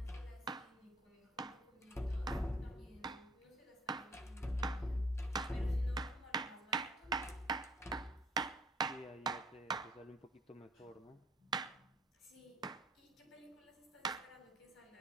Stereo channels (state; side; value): normal; both; correlation 0.59